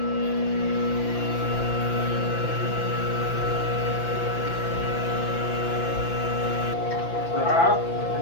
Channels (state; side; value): late; right; 5.9 ms